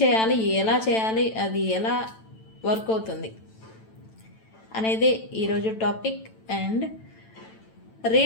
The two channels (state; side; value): late; right; 9.0 ms